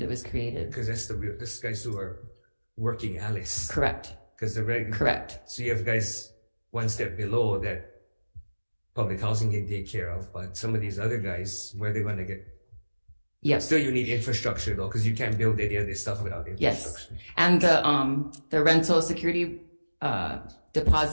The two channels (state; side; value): inverted; both; correlation -1.00